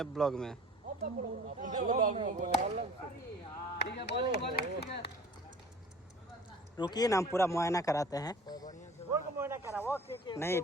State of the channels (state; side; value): normal; both; correlation 0.46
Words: ब्लॉग में। ठीक है बॉलिंग ठीक है। रुकिए ना, हम पूरा मुआयना कराते हैं। बोल को मोहना करा वो नहीं